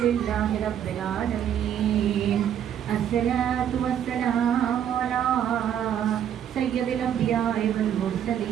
لله رب العالمين. الصلاة والسلام على سيد الأنبياء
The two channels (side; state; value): left; quieter; 9.6 dB